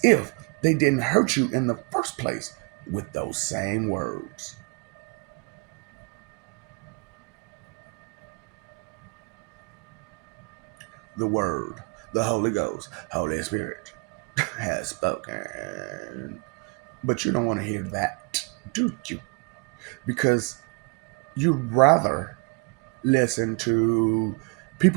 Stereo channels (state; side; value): quieter; left; 31.6 dB